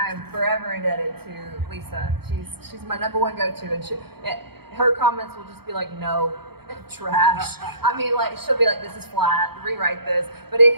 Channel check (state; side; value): late; left; 0.96 ms